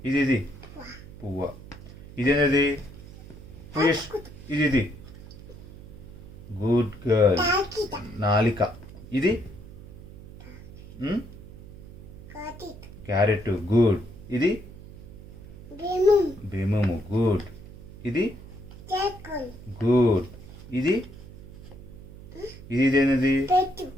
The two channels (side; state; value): right; noise; hum, 17 dB below the sound